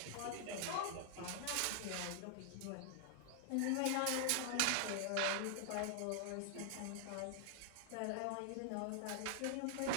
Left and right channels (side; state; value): both; different; correlation 0.00